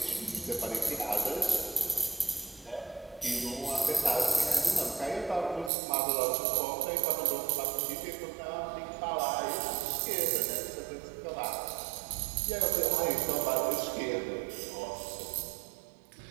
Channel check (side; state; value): left; drops out; at 5.7 s